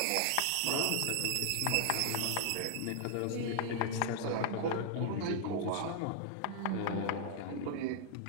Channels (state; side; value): different; both; correlation 0.00